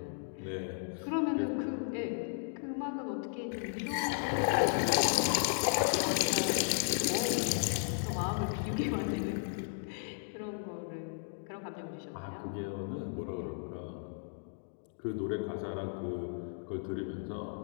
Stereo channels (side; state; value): right; silent; digital silence